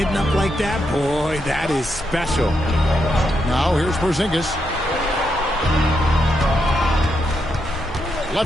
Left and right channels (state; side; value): normal; both; correlation 0.81